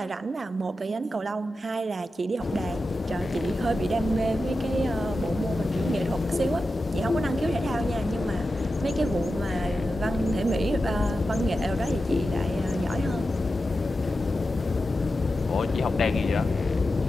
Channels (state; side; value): normal; both; correlation 0.91